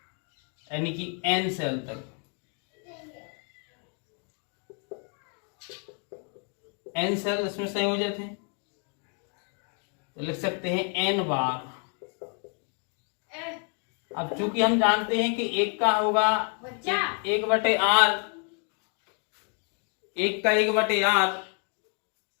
यानी कि n सेल तक, n सेल इसमें संयोजित है, तो लिख सकते हैं n बार। अब चूंकि हम जानते हैं कि एक का होगा 1/R, एक का 1/R,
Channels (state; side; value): quieter; right; 38.1 dB